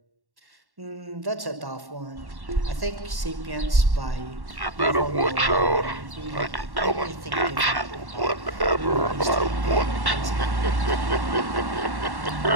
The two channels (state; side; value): late; left; 1.1 ms